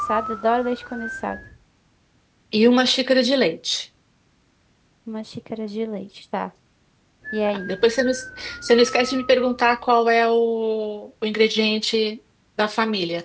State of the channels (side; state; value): both; identical; correlation 1.00